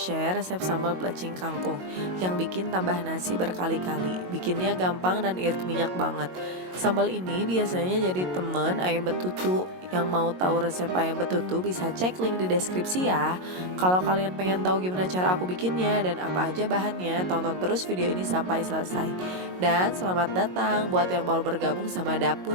resep sambal plecing kangkung yang bikin tambah nasi berkali-kali. Bikinnya gampang dan irit minyak banget. Sambal ini biasanya jadi temen ayam betutu. Yang mau tahu resep ayam betutu bisa cek link di deskripsi ya. Kalau kalian pengen tahu gimana cara aku bikinnya dan apa aja bahannya, tonton terus video ini sampai selesai. Dan selamat datang buat yang baru bergabung sama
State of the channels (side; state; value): left; late; 22 ms